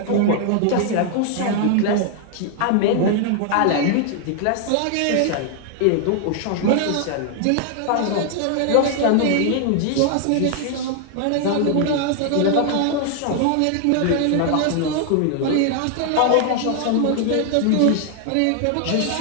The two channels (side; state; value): both; different; correlation 0.00